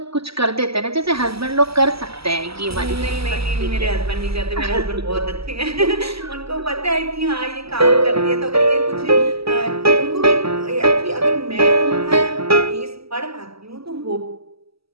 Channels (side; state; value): left; late; 0.76 ms